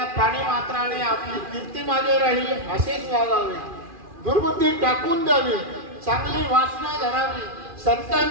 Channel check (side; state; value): left; late; 2.4 ms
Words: प्राणी मात्राने आपली कीर्ती मागे राहील असेच वागावे, दुर्बुद्धी टाकून द्यावी, चांगली वासना धरावी,